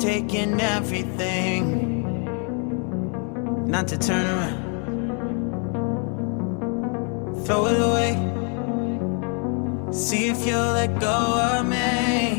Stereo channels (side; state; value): right; quieter; 39.8 dB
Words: everything not to turn around. Throw it away. See if you'll let go of